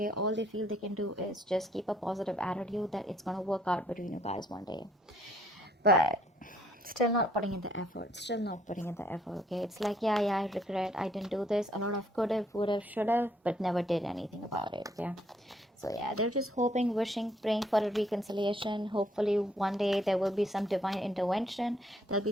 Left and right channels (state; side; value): normal; both; correlation 0.67